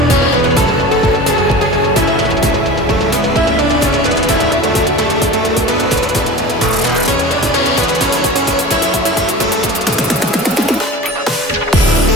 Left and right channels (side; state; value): both; normal; correlation 0.36